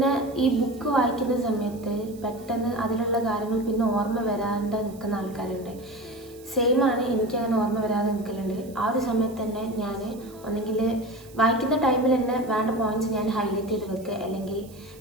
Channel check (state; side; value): noise; right; hiss, 24 dB below the sound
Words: ഈ ബുക്ക് വായിക്കുന്ന സമയത്ത് പെട്ടെന്ന് അതിലുള്ള കാര്യങ്ങൾ പിന്നെ ഓർമ്മ വരാണ്ട് നിൽക്കുന്ന ആൾക്കാരുണ്ട്. സെയിമാണ്, എനിക്കങ്ങനെ ഓർമ്മ വരാതെ നിൽക്കലുണ്ട്. ആ ഒരു സമയത്ത് തന്നെ ഞാൻ ഒന്നെങ്കിൽ വായിക്കുന്ന ടൈമിൽ തന്നെ വേണ്ട പോയിൻറ്റ്സ് ഞാൻ ഹൈലൈറ്റ് ചെയ്ത് വെക്കുക, അല്ലെങ്കിൽ